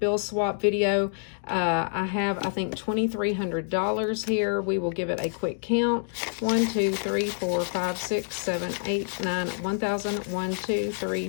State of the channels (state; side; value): silent; right; digital silence